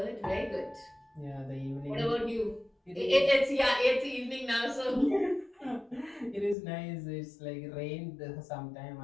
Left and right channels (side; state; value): right; drops out; at 6.6 s